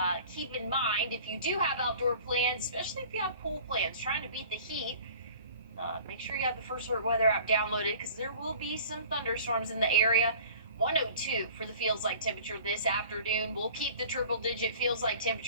keep in mind if you do have outdoor plans, especially if you have pool plans, trying to beat the heat. Make sure you have the First Alert weather app downloaded because there will be some thunderstorms in the area. 102 for the feels like temperature this afternoon. We'll keep the triple digit feels like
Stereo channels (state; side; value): inverted; both; correlation -0.46